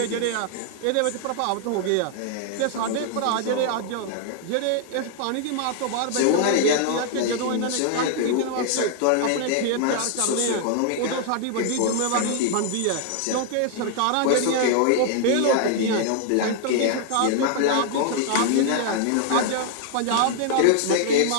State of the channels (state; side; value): different; both; correlation 0.00